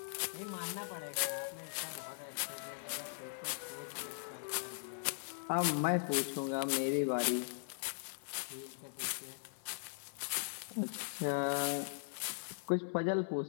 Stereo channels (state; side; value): silent; right; 51 dB below the other